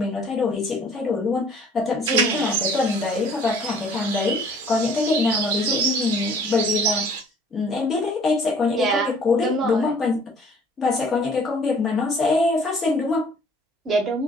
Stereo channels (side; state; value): both; normal; correlation 0.55